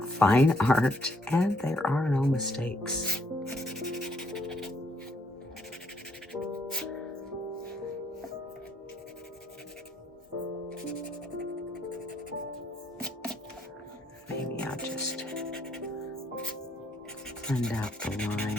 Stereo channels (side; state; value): both; normal; correlation 0.69